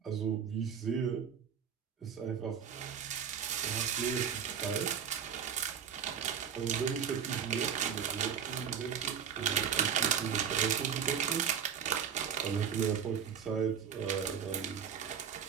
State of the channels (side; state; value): left; quieter; 7.7 dB